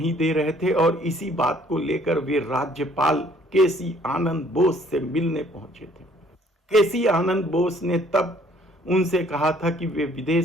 दे रहे थे और इसी बात को लेकर वे राज्यपाल केसी आनंद बोस से मिलने पहुंचे थे। केसी आनंद बोस ने तब उनसे कहा था कि वे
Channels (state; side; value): normal; both; correlation 0.60